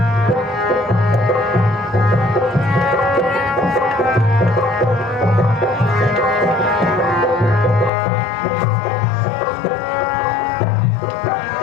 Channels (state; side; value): drops out; right; at 7.9 s